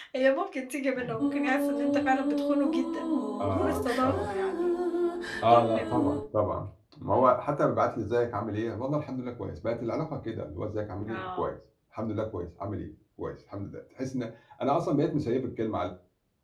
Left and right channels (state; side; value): identical; both; correlation 1.00